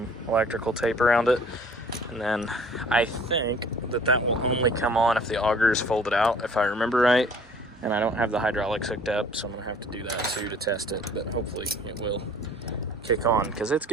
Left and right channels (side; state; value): both; normal; correlation 0.52